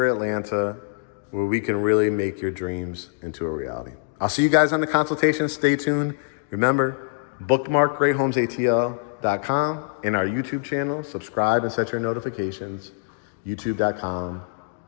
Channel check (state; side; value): silent; right; digital silence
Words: Atlanta, where we can really make your dreams into a reality. I'll see you guys on the consultation. Stay tuned. Remember, bookmark GreatHomesATL.com and our YouTube channel. Subscribe and set your notifications.